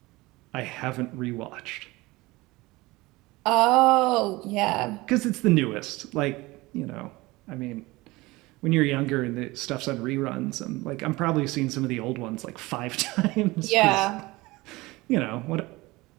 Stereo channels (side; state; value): left; quieter; 21.2 dB